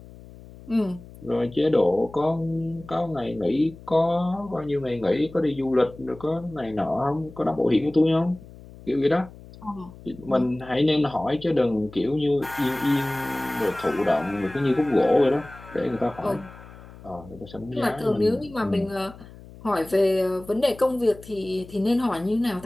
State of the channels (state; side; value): noise; left; hum, 19 dB below the sound